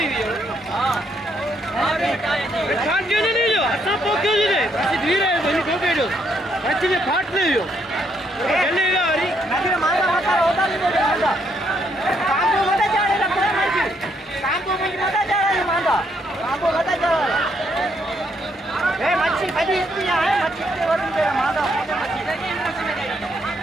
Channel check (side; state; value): both; normal; correlation 0.73